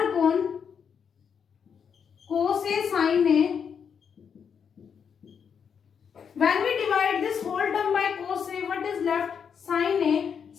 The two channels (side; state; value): right; quieter; 7.0 dB